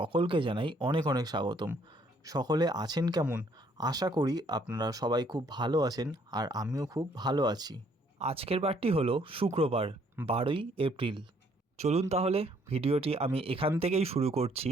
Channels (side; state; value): both; normal; correlation 0.65